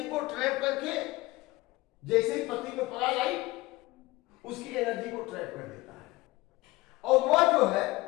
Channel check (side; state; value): right; quieter; 20.2 dB